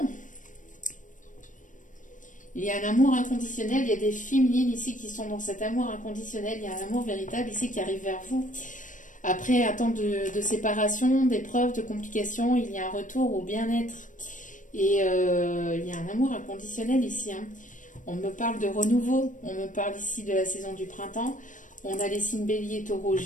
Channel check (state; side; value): late; right; 0.37 ms